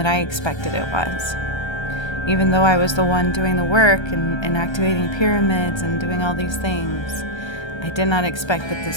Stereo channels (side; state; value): right; late; 1.3 ms